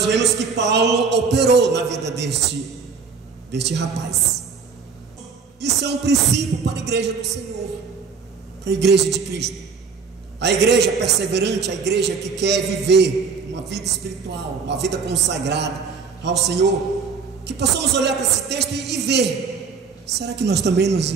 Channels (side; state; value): left; quieter; 5.4 dB